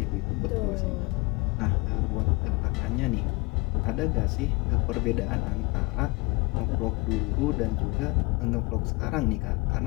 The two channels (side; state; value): right; quieter; 25.3 dB